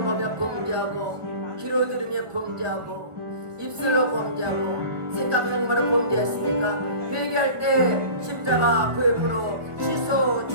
보며 범죄하고 귀로 들으며 범죄하고 입술로 범죄하고 생각하는 바로 범죄했으니까 회개할 때 십자가 보혈로 씻어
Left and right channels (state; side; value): late; left; 1.4 ms